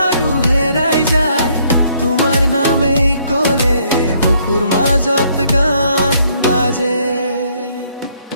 হেৰাই যায়, তোমাৰ নামেই ক'লে বুকুৰ মাজত গান বাজে।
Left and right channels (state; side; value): inverted; both; correlation -0.67